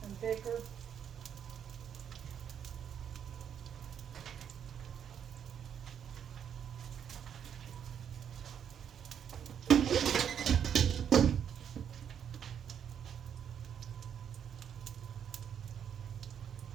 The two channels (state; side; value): quieter; left; 8.5 dB